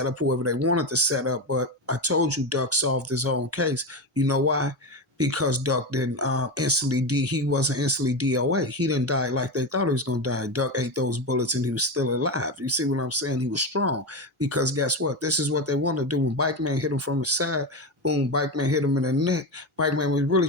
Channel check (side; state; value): both; normal; correlation 0.17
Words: up whoever they wanted to set up. But I told you Duck solved his own case. You know why? Because Duck didn't he wasn't instantly DOA. He didn't die like they thought he was going to die. Duck ate those bullets and he was still alive. You see what I'm saying? He was strong, because guess what? This is what they want to do. When Bike Man hit him from the side, boom, Bike Man hit him in the neck. Bike Man was really